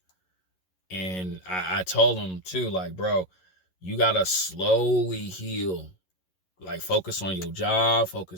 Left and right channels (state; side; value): late; right; 11 ms